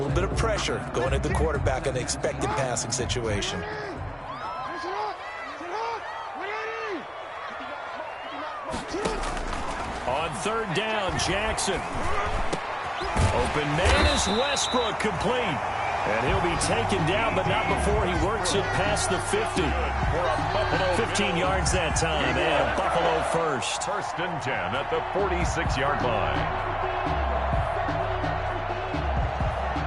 bit of pressure going at the quarterback in the expected passing situation. On 3rd down, Jackson. Open man is Westbrook, complete. And he'll be taken down, but not before he works it past the 50. 15 yards that time, and Buffalo first. First and 10 at the 46-yard line.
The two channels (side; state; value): both; identical; correlation 1.00